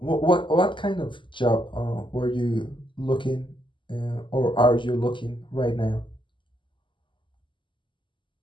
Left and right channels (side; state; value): right; late; 0.24 ms